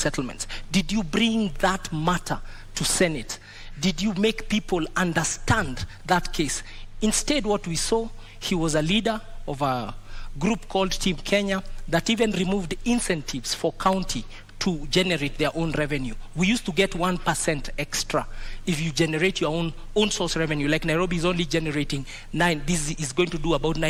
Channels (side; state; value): both; identical; correlation 1.00